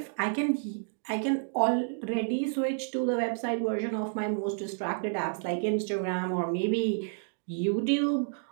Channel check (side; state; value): left; silent; digital silence